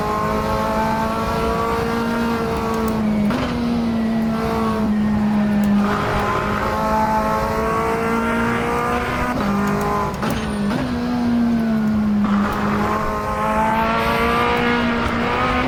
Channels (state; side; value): identical; both; correlation 1.00